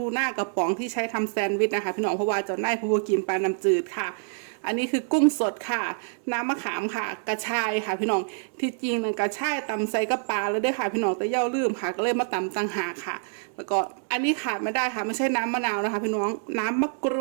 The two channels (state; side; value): silent; left; digital silence